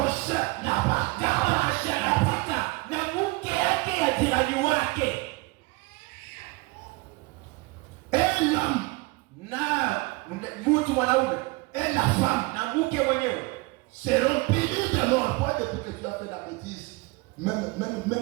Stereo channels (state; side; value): quieter; left; 24.4 dB